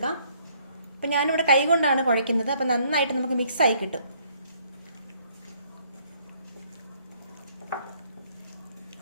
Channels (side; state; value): both; inverted; correlation -0.65